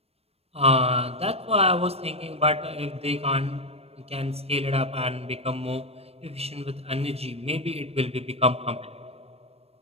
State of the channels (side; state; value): left; late; 0.29 ms